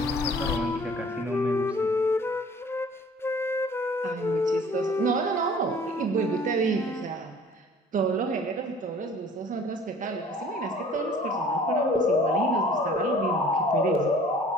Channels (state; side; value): normal; both; correlation 0.50